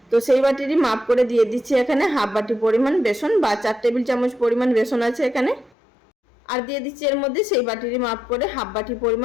তো সেই বাটিরই মাপ করে দিয়ে দিচ্ছি এখানে হাফ বাটি পরিমাণ বেসন বা 4 টেবিল চামচ পরিমাণ বেসন আছে এখানে। আর দিয়ে দিচ্ছি এর মধ্যে সেই বাটিরই মাপ করে হাফ বাটি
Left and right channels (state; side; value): drops out; right; at 5.7 s